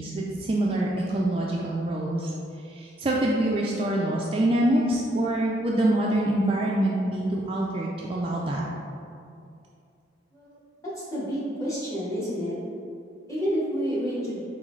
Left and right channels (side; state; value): both; normal; correlation 0.73